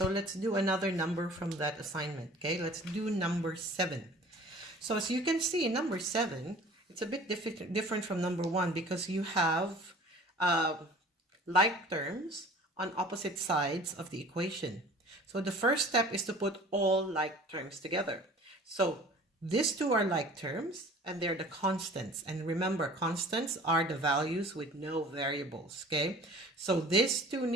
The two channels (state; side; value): normal; both; correlation 0.46